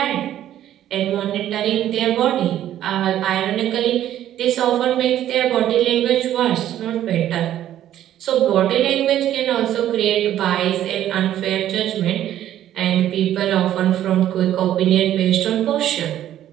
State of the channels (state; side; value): quieter; left; 11.9 dB